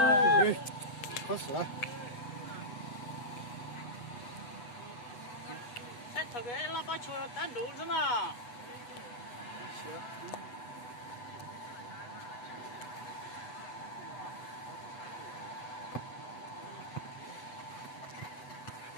可死了。在特别喇叭球单独是吗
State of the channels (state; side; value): late; right; 8.0 ms